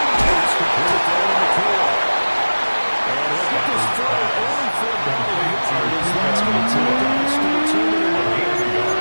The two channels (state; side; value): inverted; both; correlation -1.00